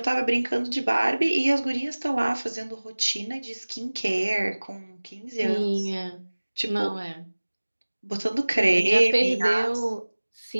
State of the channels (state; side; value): inverted; both; correlation -1.00